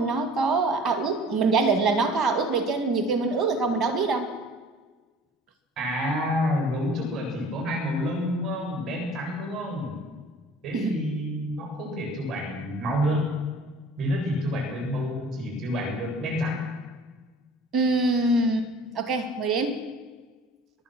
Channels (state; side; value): normal; both; correlation 0.48